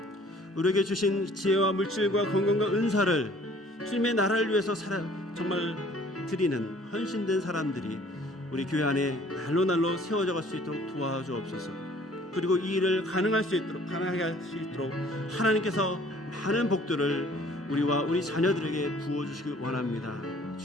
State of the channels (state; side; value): normal; both; correlation 0.54